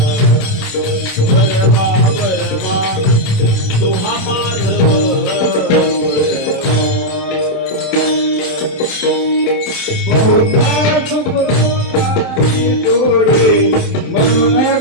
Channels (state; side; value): late; right; 27 ms